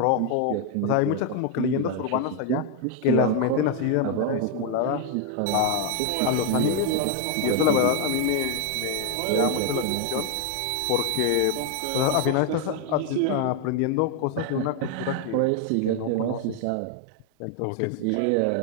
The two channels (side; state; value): both; different; correlation 0.01